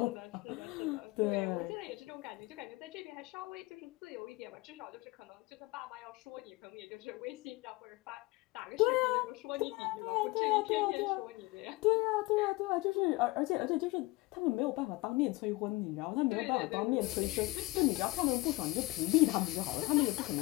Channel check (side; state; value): right; quieter; 21.9 dB